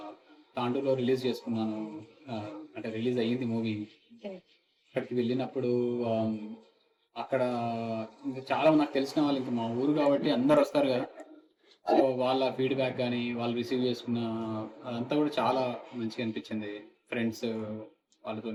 తాండూరులో రిలీజ్ చేసుకున్నాను. అంటే రిలీజ్ అయ్యింది మూవీ. ఓకే. అక్కడికి వెళ్ళినప్పుడు ఆమ్, అక్కడ ఇంకా చాలా నాకు తెలిసిన వాళ్ళు, ఇంకా మా ఊరు కాబట్టి అందరు వస్తారు కదా. సో వాళ్ళ ఫీడ్బ్యాక్ కానీ వాళ్ళు రిసీవ్ చేసుకున్న అదంతా కూడా చాలా మంచిగా అనిపించింది. ఫ్రెండ్స్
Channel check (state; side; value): identical; both; correlation 1.00